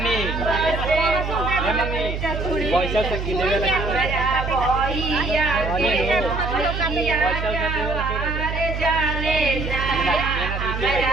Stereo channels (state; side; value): noise; right; hum, 4 dB below the sound